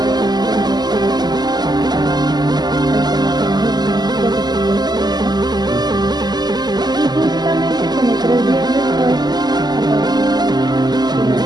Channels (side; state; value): left; late; 0.20 ms